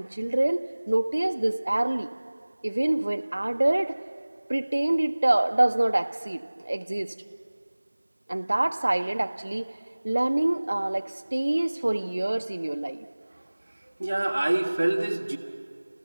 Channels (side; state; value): both; inverted; correlation -1.00